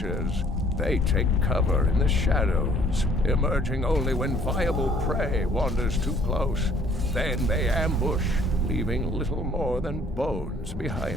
They take cover in the shadows, emerging only when viable prey wanders too close. Then they ambush, leaving little more than bones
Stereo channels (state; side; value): normal; both; correlation 0.59